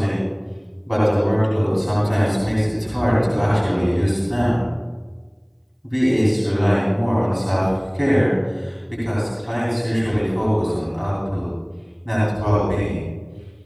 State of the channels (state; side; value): identical; both; correlation 1.00